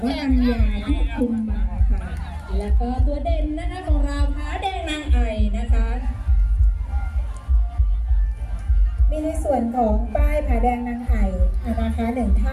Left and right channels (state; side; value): identical; both; correlation 1.00